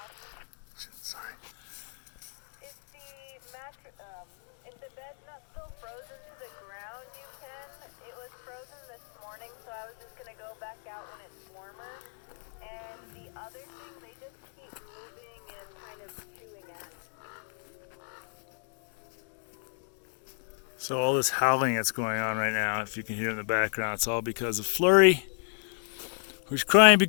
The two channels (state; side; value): silent; right; 56 dB below the other